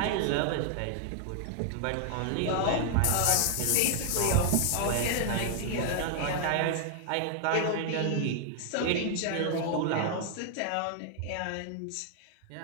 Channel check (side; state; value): both; different; correlation 0.00